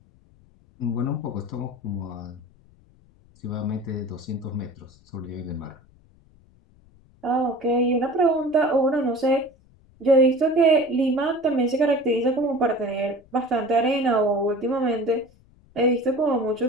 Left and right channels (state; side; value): noise; left; rumble, 29 dB below the sound